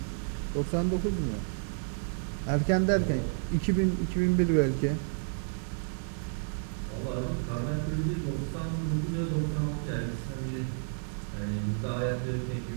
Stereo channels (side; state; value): left; silent; digital silence